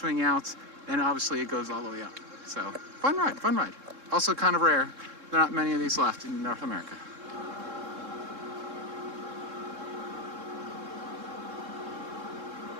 out. And obviously it goes all the way up. So, fun ride, fun ride. Also kind of rare. There are not many of these left in North America.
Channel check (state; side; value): late; left; 3.7 ms